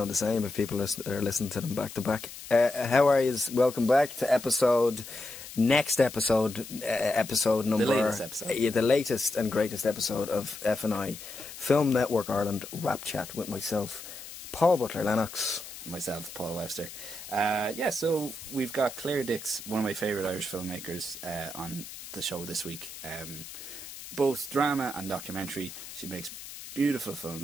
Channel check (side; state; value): left; noise; hiss, 13 dB below the sound